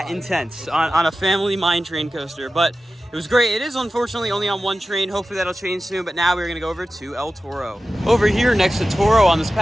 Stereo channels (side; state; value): both; normal; correlation 0.94